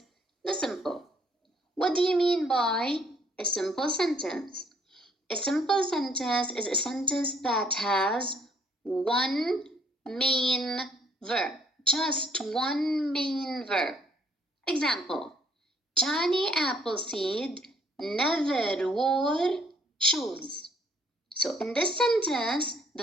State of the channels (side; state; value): both; normal; correlation 0.64